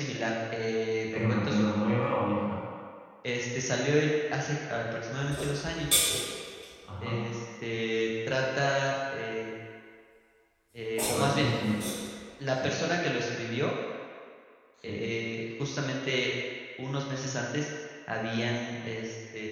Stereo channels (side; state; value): both; identical; correlation 1.00